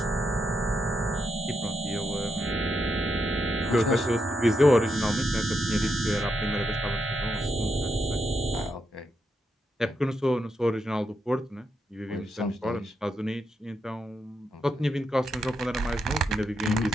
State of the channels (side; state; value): both; normal; correlation 0.82